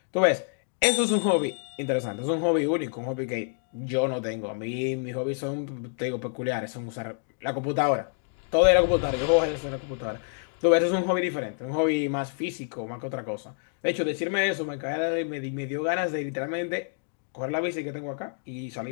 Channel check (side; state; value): right; silent; digital silence